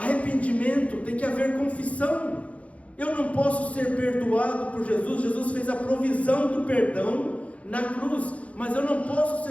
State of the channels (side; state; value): right; late; 0.065 ms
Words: tem que haver confissão. Eu não posso ser perdoado por Jesus. Jesus fez a provisão do perdão na cruz, mas eu não posso